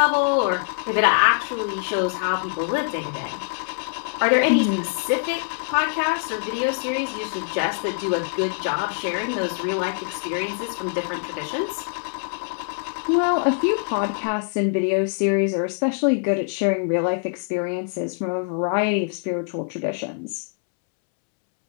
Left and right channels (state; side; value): silent; right; 63 dB below the other